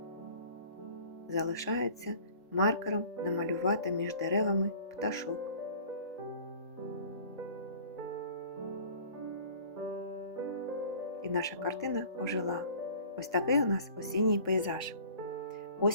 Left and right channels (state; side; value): inverted; both; correlation -0.48